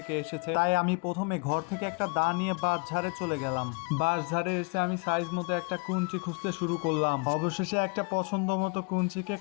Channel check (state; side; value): quieter; right; 32.1 dB